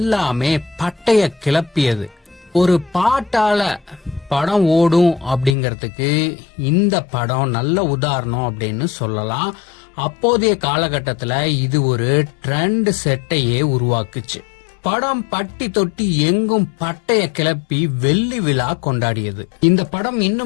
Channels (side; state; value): right; drops out; at 5.6 s